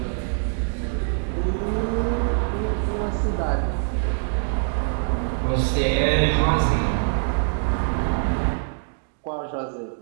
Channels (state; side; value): silent; left; 63 dB below the other